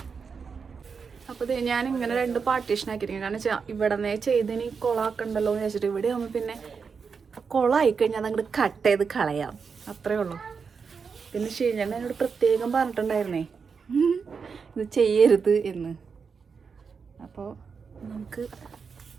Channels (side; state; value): left; quieter; 5.6 dB